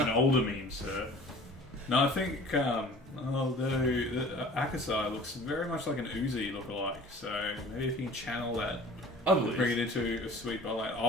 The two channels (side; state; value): both; normal; correlation 0.46